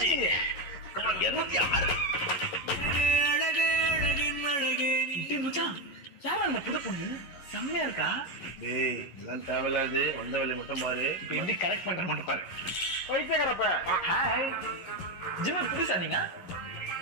Come on 206. மச்சான் யாரா அந்த புது பொண்ணு? செம்மையா இருக்கா? டேய் எல்லாம் தேவையில்லாது, வந்த வேலையை மட்டும் பாரு. இப்ப எப்படி கரெக்ட் பண்ற மட்டும் பாரு. பைத்தியக்காரப்ப. ஹாய். ஜிம் புதுசா நீங்க?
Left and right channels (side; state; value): right; late; 11 ms